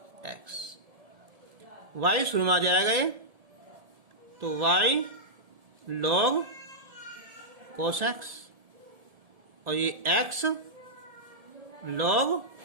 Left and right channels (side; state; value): left; late; 1.7 ms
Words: x। y शुरू में आ जाएगा ये, तो y log cos x और ये x log